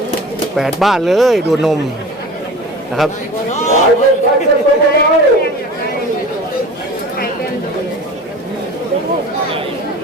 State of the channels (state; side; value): normal; both; correlation 0.37